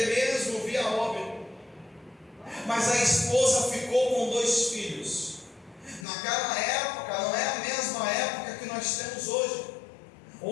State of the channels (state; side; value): drops out; right; at 6.1 s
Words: mesmo vir a óbito. Mas a esposa ficou com 2 filhos. Naquela época, não é a mesma época que nós temos hoje,